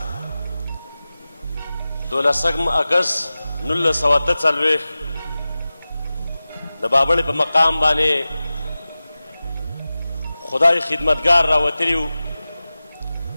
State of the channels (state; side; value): inverted; both; correlation -0.96